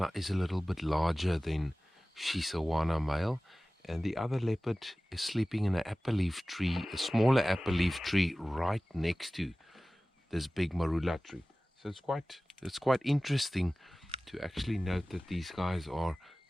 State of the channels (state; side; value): normal; both; correlation 0.97